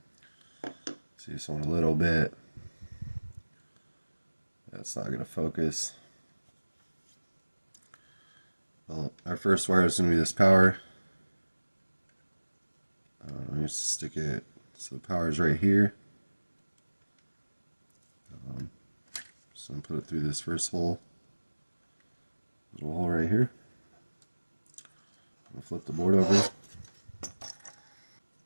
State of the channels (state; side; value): inverted; both; correlation -1.00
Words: So you just want a little bit. That's not going to focus. Well, our first wire is going to be this power. Let me just stick it so the power is right here. So I'm going to put it through this first hole. Little hole right here. I'm going to flip the board over.